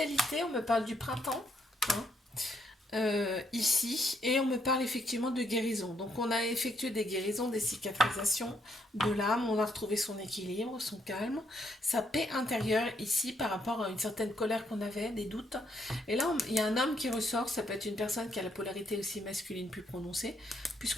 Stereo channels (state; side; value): normal; both; correlation 0.74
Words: on me parle du printemps, hein, ici, et on me parle effectivement de guérison. Donc, on a effectué des guérisons, des cicatrisations de l'âme, on a retrouvé son équilibre, son calme, sa paix intérieure ici par rapport à une certaine colère qu'on avait, des doutes. Et là, il y a un homme qui ressort, ça peut être une personne qui a la polarité aussi masculine plus prononcée,